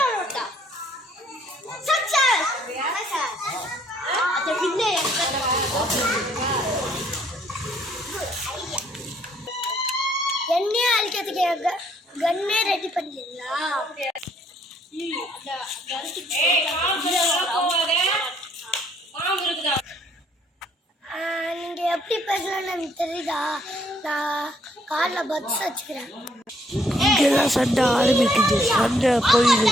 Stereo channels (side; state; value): both; normal; correlation 0.66